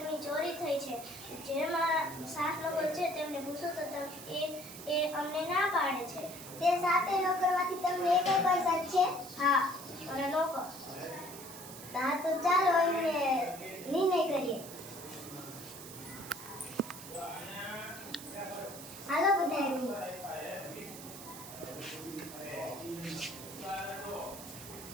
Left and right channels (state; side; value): noise; right; hiss, 13 dB below the sound